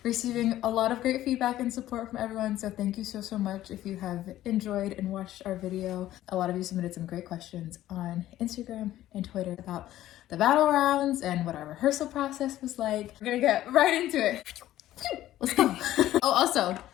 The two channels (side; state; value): right; quieter; 13.9 dB